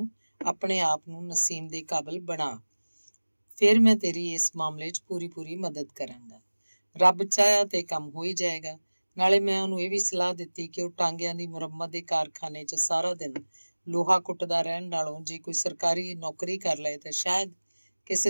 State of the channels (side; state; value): both; inverted; correlation -1.00